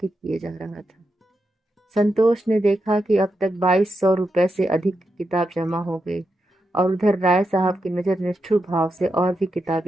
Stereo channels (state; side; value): normal; both; correlation 0.86